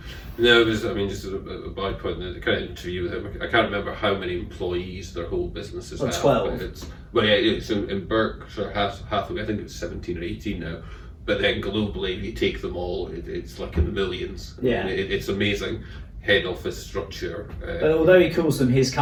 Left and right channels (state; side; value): identical; both; correlation 1.00